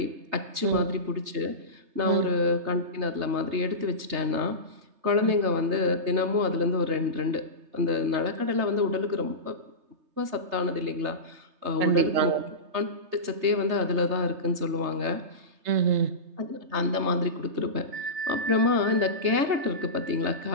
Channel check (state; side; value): late; left; 3.3 ms